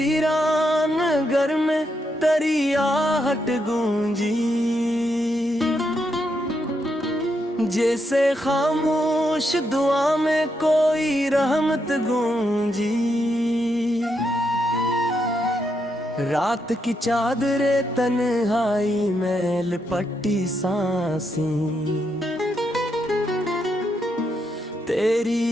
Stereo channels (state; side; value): normal; both; correlation 0.80